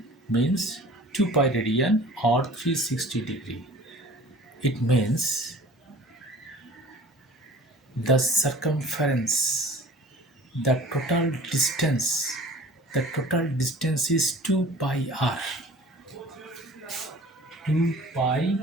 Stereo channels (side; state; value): both; normal; correlation 0.45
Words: means 2 pi radian or 360 degree. It means the circumference, the total distance is 2 pi r. 2 pi